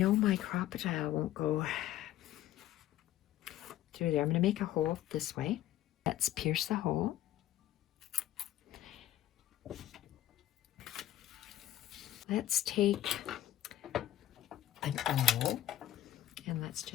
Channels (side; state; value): right; quieter; 13.3 dB